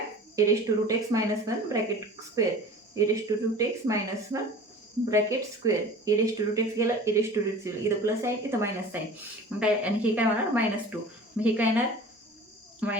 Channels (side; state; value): both; normal; correlation 0.41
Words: e raise to root x -1 bracket square e raise to root x -1 bracket square e raise to root X गेलं e raise to root X गेलं इथं प्लस आहे इथं मायनस आहे मग काय आणि हे काय होणार -2 मग हे काय येणार